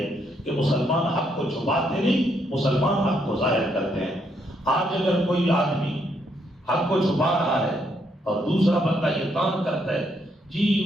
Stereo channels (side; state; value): both; normal; correlation 0.74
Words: کہ مسلمان حق کو چھپاتے نہیں، مسلمان حق کو ظاہر کرتے ہیں۔ آج اگر کوئی آدمی حق کو چھپا رہا ہے اور دوسرا بندہ یہ کام کرتا ہے، جی